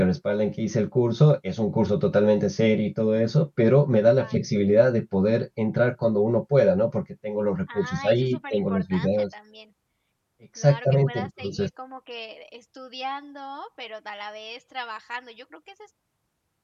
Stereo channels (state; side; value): identical; both; correlation 1.00